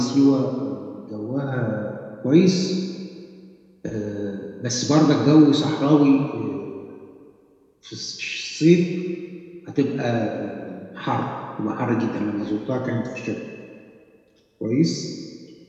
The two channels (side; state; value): both; identical; correlation 1.00